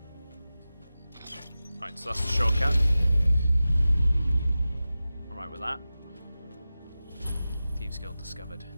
Right, so that's the shortcut. I'm right with that. Thieves Guild discovered.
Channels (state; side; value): inverted; both; correlation -0.95